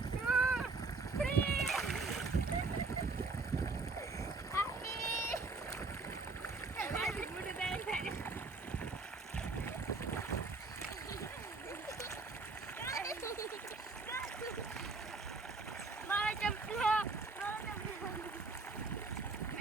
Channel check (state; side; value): quieter; left; 3.8 dB